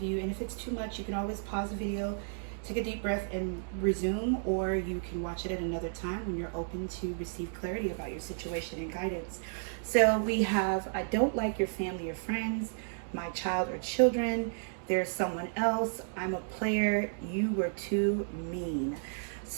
you, and if it's too much, you can always pause the video, take a deep breath and resume, or you can watch it at another time when you're open to receive clarity about your situation and guidance. So we have, I don't like your family or friends, my child or children, there's someone else, I'm a player, you were too mean.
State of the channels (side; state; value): left; silent; digital silence